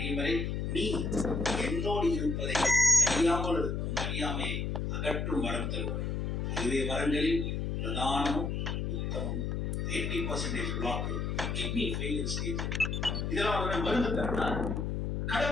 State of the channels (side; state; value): left; noise; hum, 1 dB below the sound